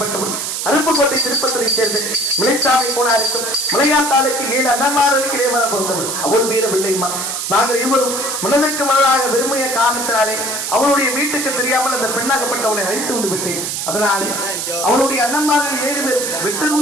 அருப்புக்கோட்டை திருப்பத்திரை சேர்ந்து மிளைச்சாமி போனாருக்கும் மலையாத்தாளுக்கு 7 அண்ணன்மார்களுக்கு இளையவர பிறந்தவள். அவள் மீது வெள்ளையம்மா. நாங்கள் இருவரும் மனதிற்கு மனதாக விரும்பிய காரணத்தினாலே அவளுடைய வீட்டுக்கு தெரியாமல் அந்த பெண்ணாகப்பட்டவளை அழைத்து வந்து விட்டேன். அதனாலே அவளுடைய அண்ணன்மார்கள் 7 பேர் வெட்டர்வு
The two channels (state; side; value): noise; right; hiss, 3 dB below the sound